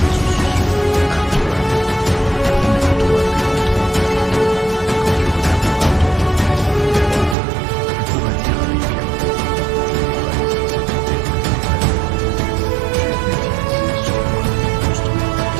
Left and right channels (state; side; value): drops out; left; at 7.4 s